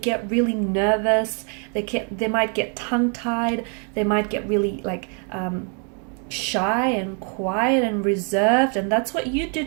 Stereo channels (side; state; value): left; quieter; 39.6 dB